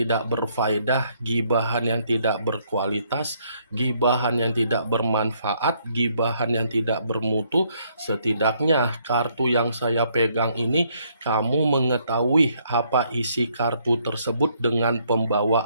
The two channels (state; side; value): inverted; both; correlation -0.70